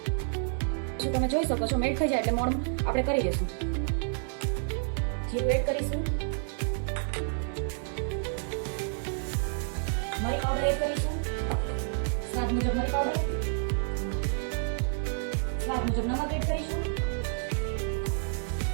તમે જોઈ શકો છો મેલ્ટ થઈ જાય એટલે મોણ આપણે કરી દઈશું. જીરું એડ કરીશું, મરી પાવડર એડ કરીશું, સ્વાદ મુજબ મરી પાવડર, સ્વાદ મુજબ નમક એડ કરીશું.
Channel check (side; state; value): left; silent; 58 dB below the other